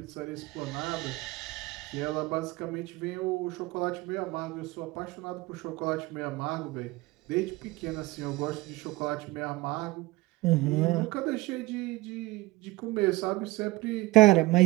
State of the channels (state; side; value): quieter; left; 20.5 dB